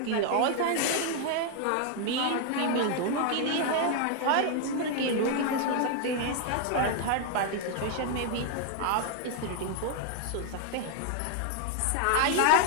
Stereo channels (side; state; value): both; different; correlation 0.00